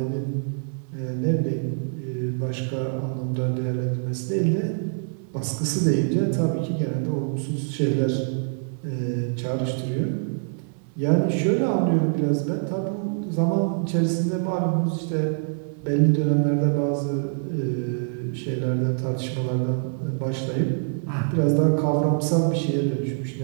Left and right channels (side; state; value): left; silent; digital silence